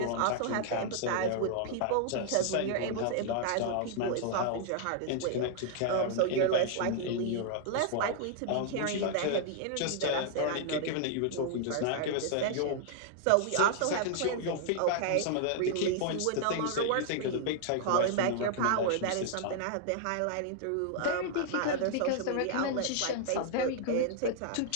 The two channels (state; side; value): different; both; correlation -0.01